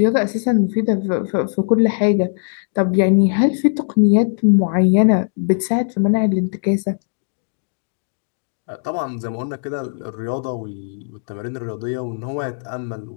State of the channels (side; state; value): right; silent; digital silence